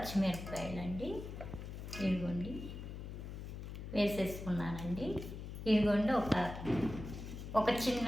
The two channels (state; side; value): noise; left; hum, 8 dB below the sound